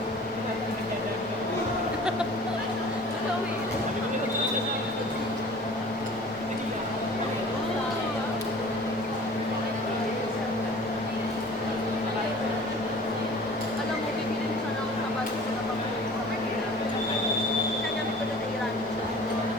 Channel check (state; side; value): normal; both; correlation 0.45